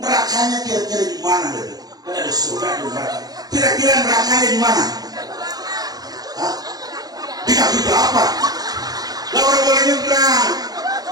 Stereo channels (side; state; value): left; late; 0.19 ms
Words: nerakanya kira-kira di mana? Kan ada surga di neraka. Kira-kira nerakanya di mana? Hah? Di kaki bapak. Lah orang boleh nyebrang.